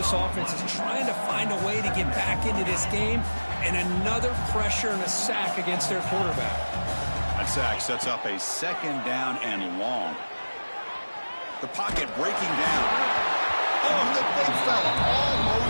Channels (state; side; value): inverted; both; correlation -1.00